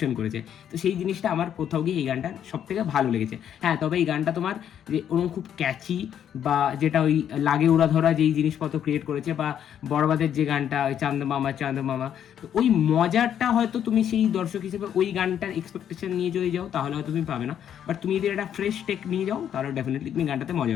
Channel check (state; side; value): quieter; right; 9.5 dB